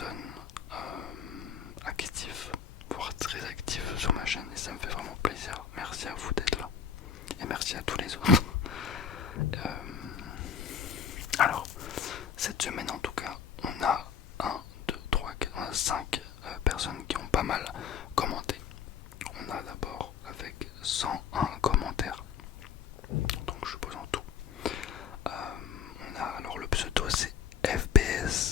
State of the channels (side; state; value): right; quieter; 7.0 dB